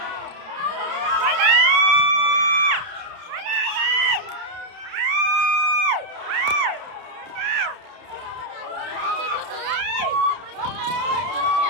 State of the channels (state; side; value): late; left; 30 ms